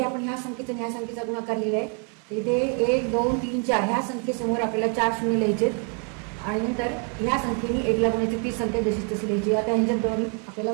आपण ह्या संख्येचा ह्या संख्येचा गुणाकार लिहिला आहे. इथे 1 2 3 4 ह्या संख्येसमोर आपल्याला 4 शून्य लिहायचे आणि नंतर ह्या संख्येने 1ला गुणायची, ती संख्या जशी तशी लिहायची. आता ह्यांच्यात दोन्ही आपल्याला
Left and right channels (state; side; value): quieter; left; 39.8 dB